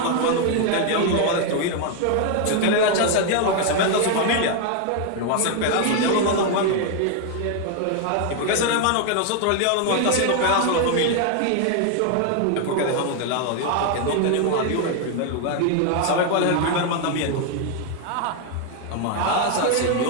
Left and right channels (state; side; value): different; both; correlation 0.01